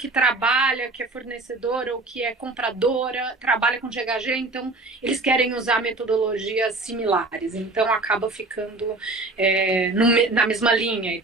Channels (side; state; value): left; quieter; 3.1 dB